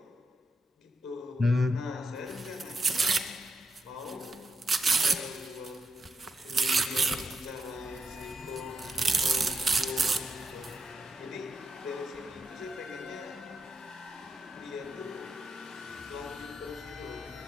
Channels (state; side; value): normal; both; correlation 0.84